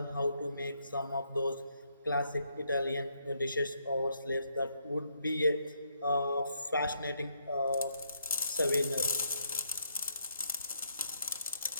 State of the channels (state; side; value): inverted; both; correlation -0.75